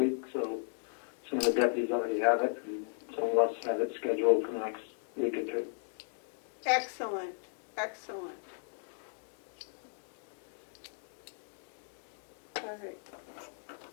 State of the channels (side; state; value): right; silent; digital silence